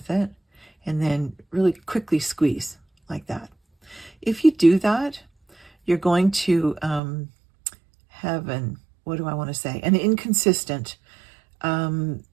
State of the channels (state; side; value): drops out; left; at 7.0 s